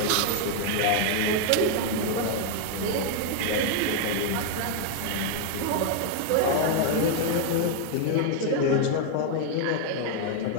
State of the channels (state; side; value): different; both; correlation 0.00